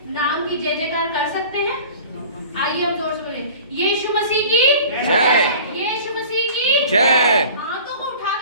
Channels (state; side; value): inverted; both; correlation -0.42